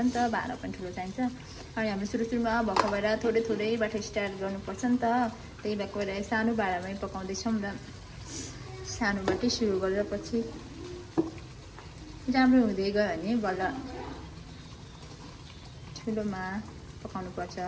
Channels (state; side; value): identical; both; correlation 1.00